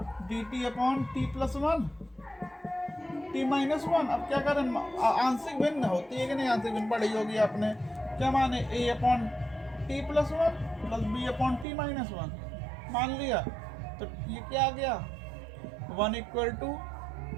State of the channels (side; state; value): left; drops out; at 11.7 s